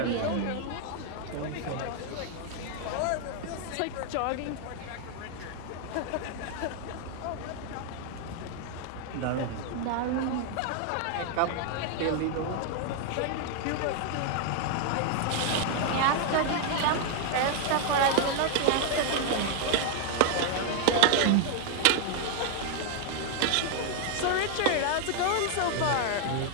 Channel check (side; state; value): both; different; correlation 0.00